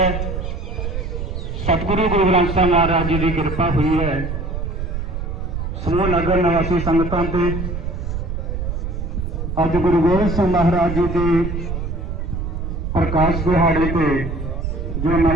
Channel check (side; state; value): right; noise; rumble, 4 dB below the sound